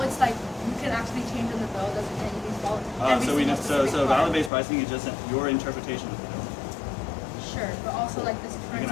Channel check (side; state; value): right; drops out; at 4.5 s